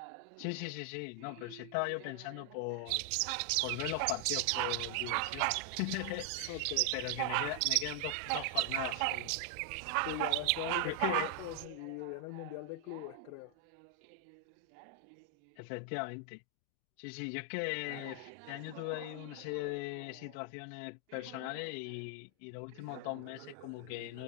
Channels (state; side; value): different; both; correlation 0.00